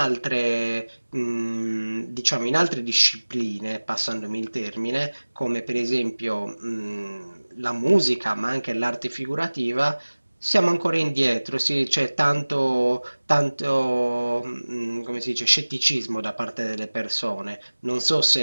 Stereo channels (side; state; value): both; inverted; correlation -1.00